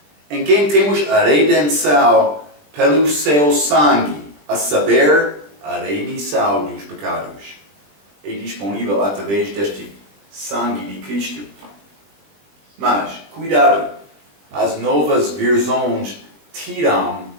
em quem temos a redenção pelo seu sangue, a saber, a remissão dos pecados. É disponível através deste sangue de Cristo. Mas, cuidado, as novas versões tiram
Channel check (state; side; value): late; left; 20 ms